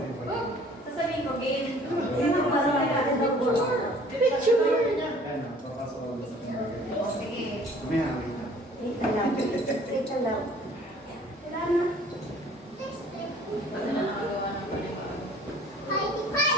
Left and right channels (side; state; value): both; normal; correlation 0.53